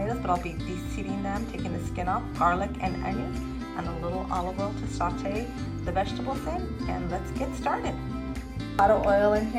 but I'll be de-seeding them, taking the skin off, garlic and onions, and a little olive oil to saute the vegetables in, and let's get started. A lot of oil in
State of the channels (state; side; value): identical; both; correlation 1.00